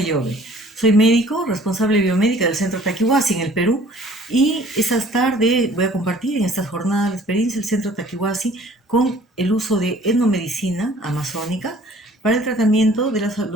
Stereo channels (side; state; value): both; normal; correlation 0.53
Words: Soy médico, responsable biomédica del Centro Taquihuasi en el Perú y esta tarde voy a compartir en estas jornadas de experiencia el Centro Taquihuasi con el uso de etnomedicina amazónica para el tratamiento de